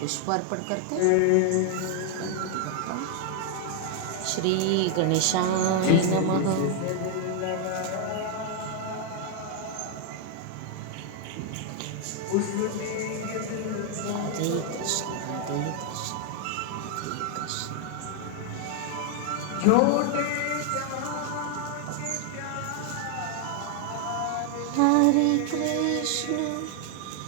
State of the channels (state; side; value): different; both; correlation 0.00